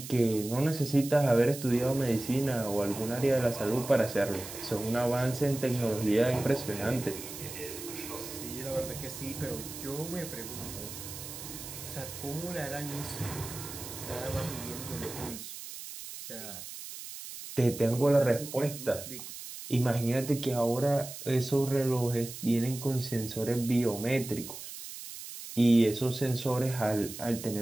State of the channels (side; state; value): right; noise; hiss, 11 dB below the sound